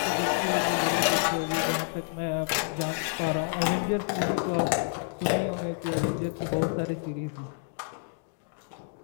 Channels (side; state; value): right; silent; digital silence